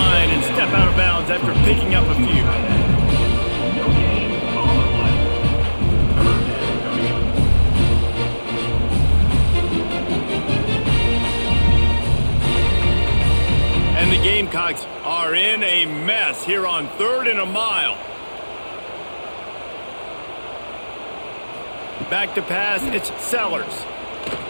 and step out of bounds after picking up a few. And the Gamecocks are in a mess here on 3rd and a mile. Back to pass, it's Sellers.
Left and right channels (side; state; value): both; inverted; correlation -1.00